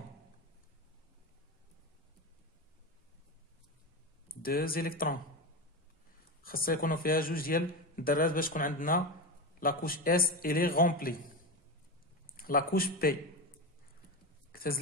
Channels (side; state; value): both; normal; correlation 0.20